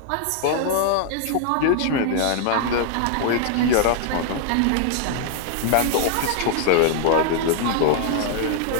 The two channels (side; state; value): both; different; correlation 0.00